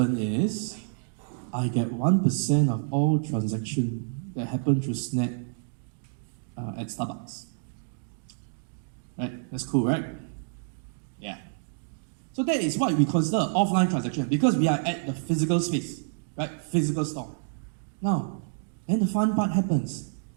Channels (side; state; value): left; silent; digital silence